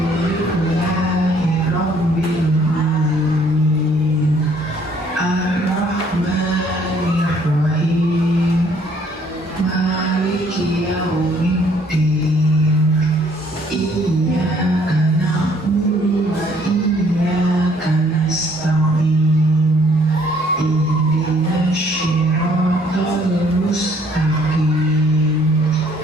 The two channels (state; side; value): normal; both; correlation 0.62